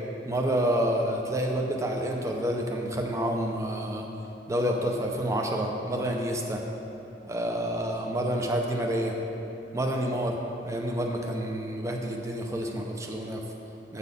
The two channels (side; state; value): both; normal; correlation 0.58